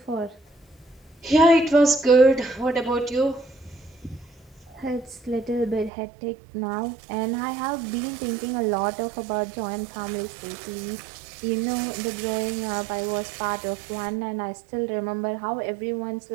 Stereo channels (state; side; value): drops out; left; at 5.9 s